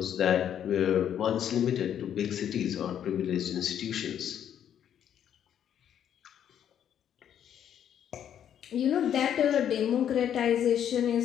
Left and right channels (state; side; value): quieter; right; 9.6 dB